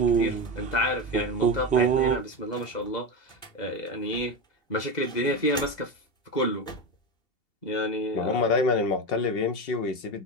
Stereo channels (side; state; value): right; late; 2.7 ms